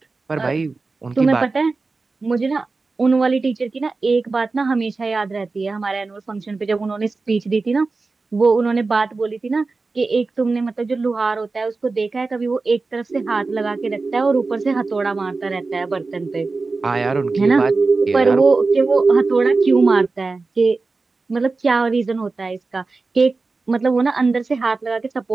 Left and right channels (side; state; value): left; quieter; 3.9 dB